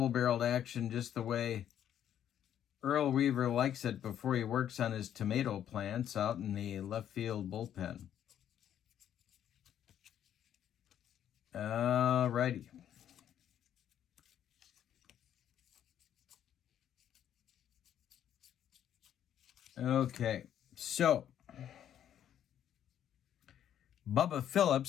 action, just the way Earl Weaver likes it before he works on his tomato plants out in the left field bullpen. Alrighty. Okay, so Bubba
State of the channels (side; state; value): right; quieter; 10.2 dB